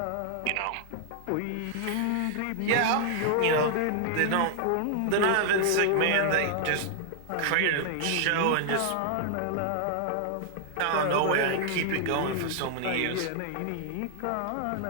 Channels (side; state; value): both; different; correlation 0.00